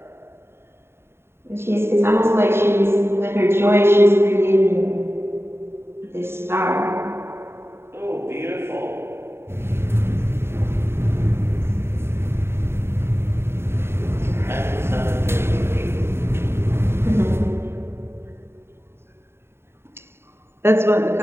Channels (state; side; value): late; left; 0.12 ms